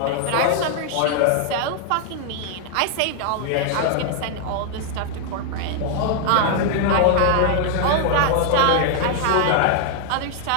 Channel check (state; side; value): different; both; correlation 0.00